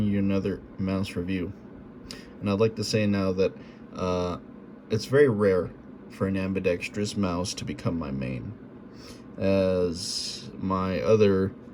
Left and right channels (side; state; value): both; identical; correlation 1.00